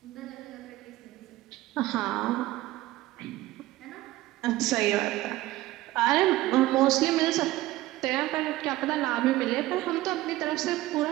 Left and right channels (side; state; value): left; quieter; 17.0 dB